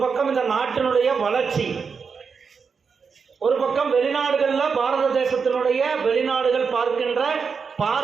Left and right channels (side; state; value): left; quieter; 5.6 dB